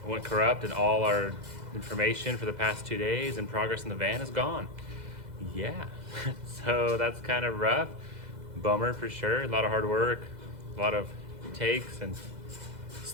went corrupt and all our information for the past 2 days and progress in the van is gone. Yeah, so that's kind of rough. Bummer for sure. A lot of hard work, a lot of takes and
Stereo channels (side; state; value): left; late; 2.0 ms